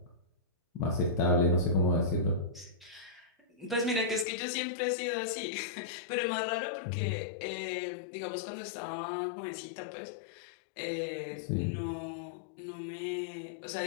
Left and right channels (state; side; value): drops out; right; at 4.2 s